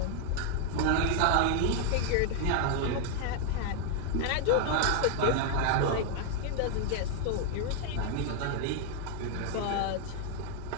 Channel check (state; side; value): different; both; correlation 0.00